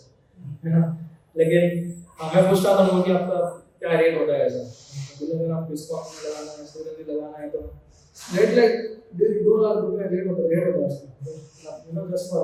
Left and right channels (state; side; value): identical; both; correlation 1.00